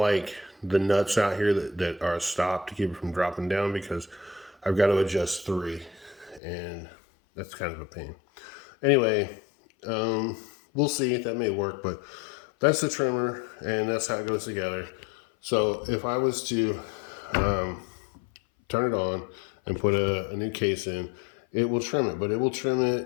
the nuts out here that are stopped to keep it from dropping down, because I've got to adjust 3. And that's kind of a pain. Anyway, we'll see if that may work, but that's the trimmer and that's how it goes together. So if I was to turn it on and put a new case in, it will trim it, but it will trim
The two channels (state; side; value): drops out; right; at 6.4 s